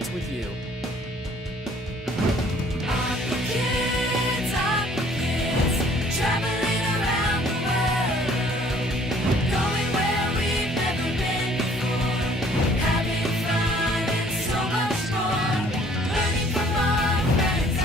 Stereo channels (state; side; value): normal; both; correlation 0.57